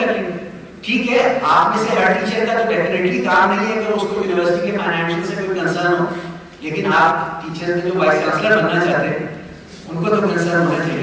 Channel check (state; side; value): identical; both; correlation 1.00